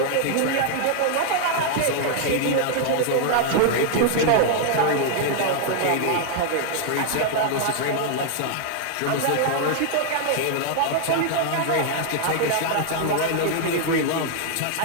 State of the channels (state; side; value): different; both; correlation 0.00